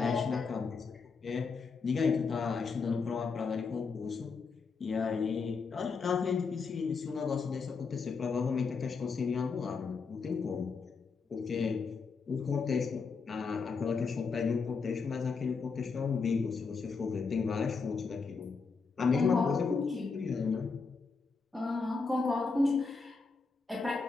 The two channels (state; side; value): quieter; right; 4.8 dB